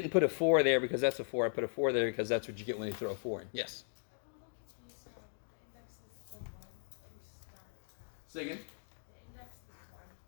put a 4 there because that's a 4. I put a 4 there because that's what you get when you throw a 4 in. Yes. Say again?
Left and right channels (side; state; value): right; silent; digital silence